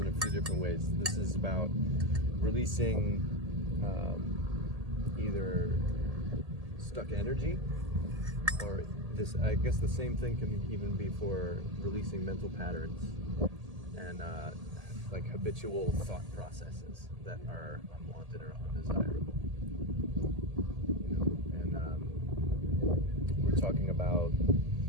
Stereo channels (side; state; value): left; late; 1.8 ms